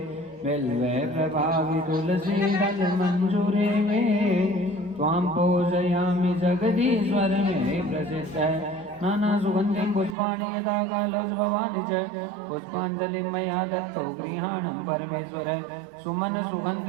बिल्वे प्रभावि तुलसी दल मंजूरे में त्वां पूजयामि जगदीश्वर में प्रसिद्ध नाना सुगंधिं पुष्पाणि यदा कालोज भवानि च पुष्पांजलिं मया दत्तो गृहाणं परमेश्वर सुमन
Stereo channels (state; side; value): drops out; left; at 10.2 s